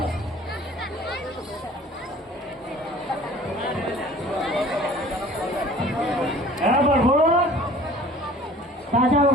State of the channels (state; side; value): normal; both; correlation 0.48